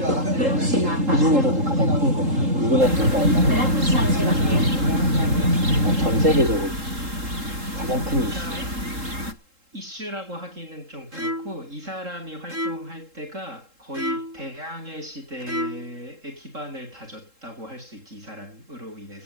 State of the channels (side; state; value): left; late; 3.7 ms